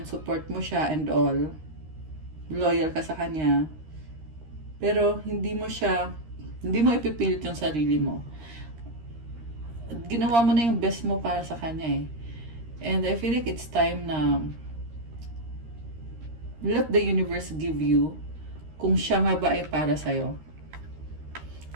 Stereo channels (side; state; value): left; late; 13 ms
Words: Support mo siya and all. Loyal ka sa kanya. Pero hindi mo ipipilit yung sarili mo. Ginawa mo na yung best mo para sa kanya eh. And I feel like it's time na let the universe give you kung siya nga ba ay para sa'yo.